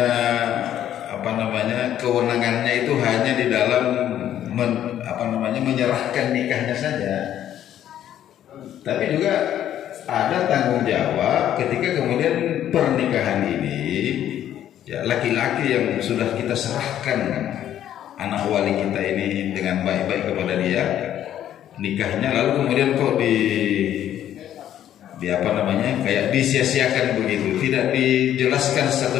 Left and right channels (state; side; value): quieter; right; 11.2 dB